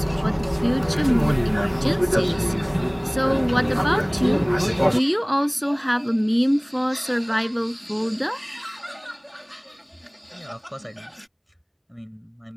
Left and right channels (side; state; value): both; identical; correlation 1.00